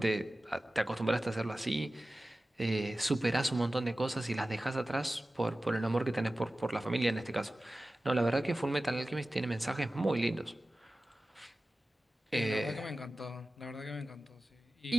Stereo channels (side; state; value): both; normal; correlation 0.96